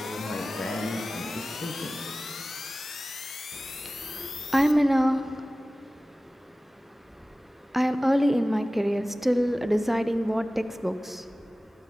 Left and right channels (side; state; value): both; normal; correlation 0.97